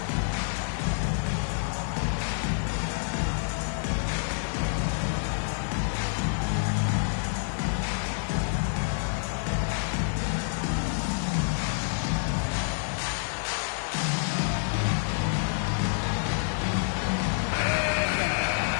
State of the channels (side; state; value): right; silent; 59 dB below the other